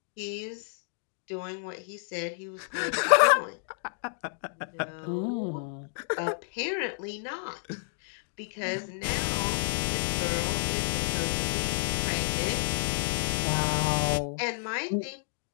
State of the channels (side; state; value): right; silent; digital silence